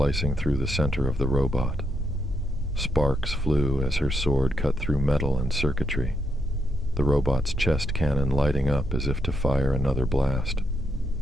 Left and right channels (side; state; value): both; normal; correlation 0.80